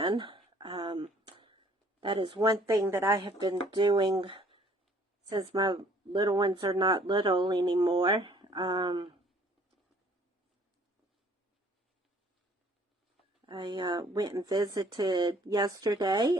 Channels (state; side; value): normal; both; correlation 0.58